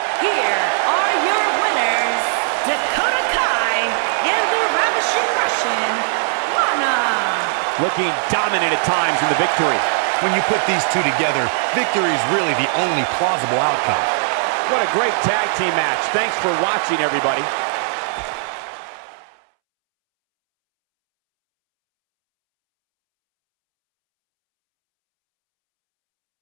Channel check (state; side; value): silent; left; 67 dB below the other